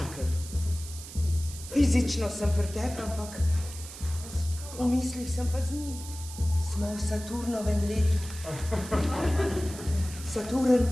Fizično sem pri tebi, ampak v mislih sem pa z njim. Smo v Saturnovem letu. Saturn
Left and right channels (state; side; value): noise; right; hiss, 13 dB below the sound